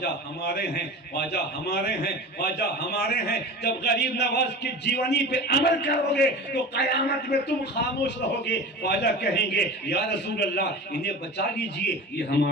ہمارے ہیں، خواجہ ہمارے ہیں، خواجہ ہمارے ہیں۔ جب غریب نواز کی جیونی پہ عمل کرو گے تو قیامت میں تم خاموش رہو گے، خواجہ کہیں گے یا رسول اللہ انہیں بچا لیجئے، یہ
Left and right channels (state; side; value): normal; both; correlation 0.33